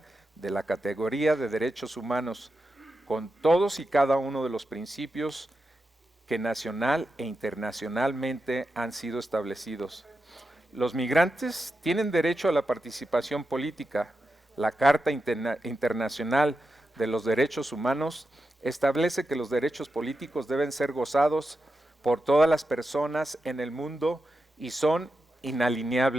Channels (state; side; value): normal; both; correlation 0.89